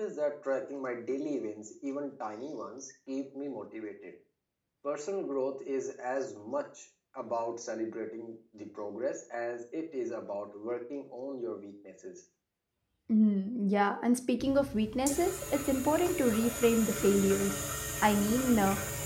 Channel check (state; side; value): identical; both; correlation 1.00